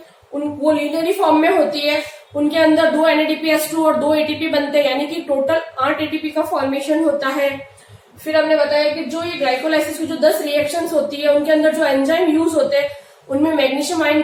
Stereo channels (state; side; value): identical; both; correlation 1.00